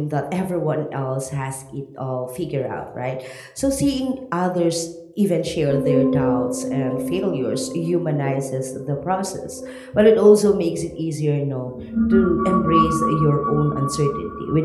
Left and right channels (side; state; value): both; identical; correlation 1.00